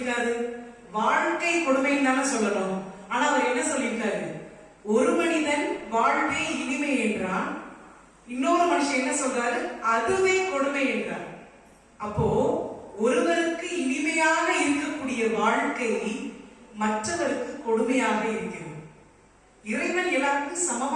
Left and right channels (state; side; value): identical; both; correlation 1.00